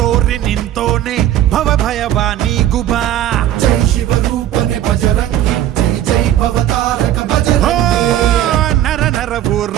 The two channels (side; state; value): left; quieter; 12.2 dB